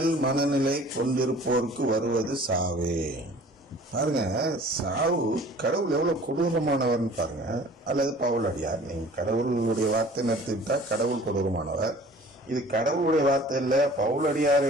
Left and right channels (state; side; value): normal; both; correlation 0.48